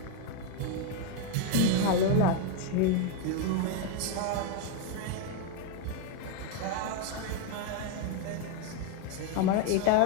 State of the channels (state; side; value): different; both; correlation 0.01